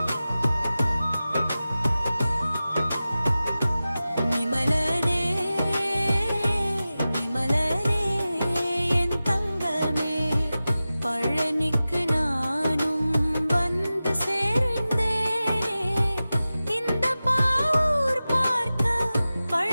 விமலனே விமலனே என் தங்கமே பழனிக்கு நானும் வந்து சேர்ந்தேனே இந்த பாவூர் பார்க்க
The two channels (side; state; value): both; inverted; correlation -0.95